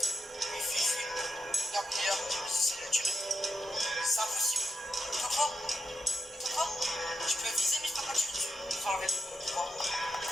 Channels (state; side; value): normal; both; correlation 0.83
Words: fuit. Regarde, c'est le tirer. C'est impossible. Tu comprends? Je peux viser, mais je peux pas tirer dessus. Enfin, enlever le pouvoir.